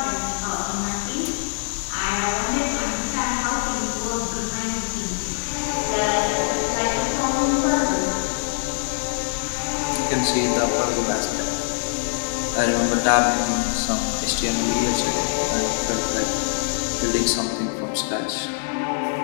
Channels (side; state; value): right; silent; digital silence